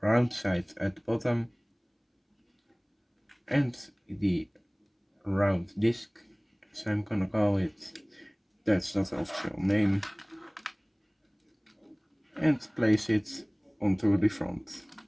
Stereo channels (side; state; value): both; identical; correlation 1.00